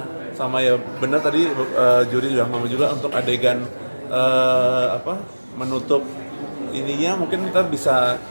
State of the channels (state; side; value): inverted; both; correlation -1.00